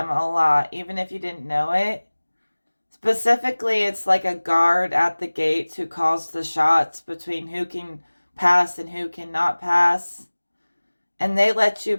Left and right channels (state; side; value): inverted; both; correlation -1.00